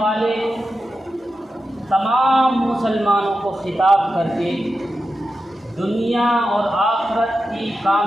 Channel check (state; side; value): normal; both; correlation 0.90